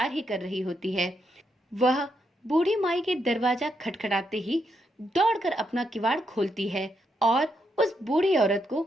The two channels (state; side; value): normal; both; correlation 0.80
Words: ही कर रही होती है। वह बूढ़ी माई के दरवाजा खटखटाते ही दौड़कर अपना किवाड़ खोलती है और उस बूढ़ी औरत